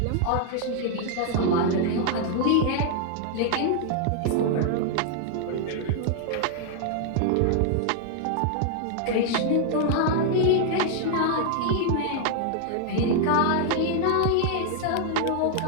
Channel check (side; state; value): both; different; correlation 0.00